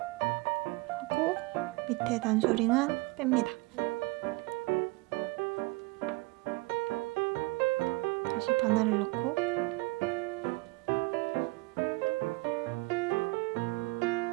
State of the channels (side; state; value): left; quieter; 23.5 dB